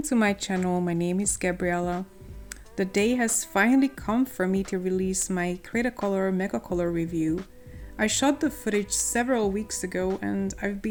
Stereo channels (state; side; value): identical; both; correlation 1.00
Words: to my channel. My name is Gabriella. The day has finally come for me to release my Cretacolor Megacolor review. I shot the footage several weeks ago and I've